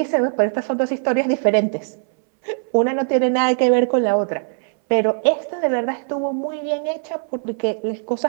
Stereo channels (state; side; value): silent; left; 64 dB below the other